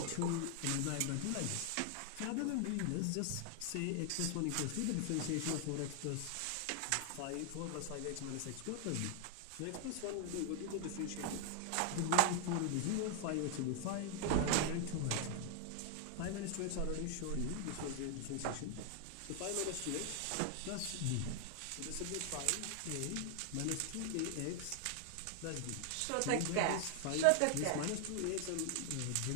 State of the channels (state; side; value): different; both; correlation 0.00